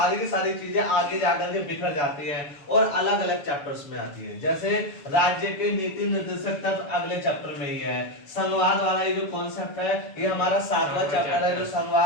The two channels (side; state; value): right; late; 7.0 ms